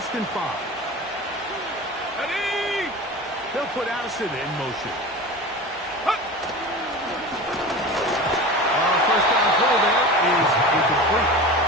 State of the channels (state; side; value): normal; both; correlation 0.32